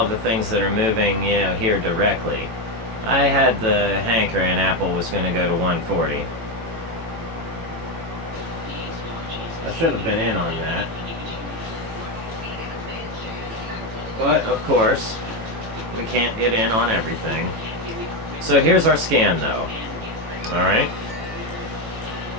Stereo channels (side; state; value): left; late; 18 ms